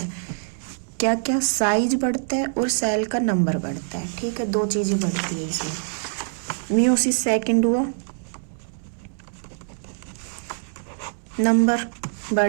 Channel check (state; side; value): silent; left; 62 dB below the other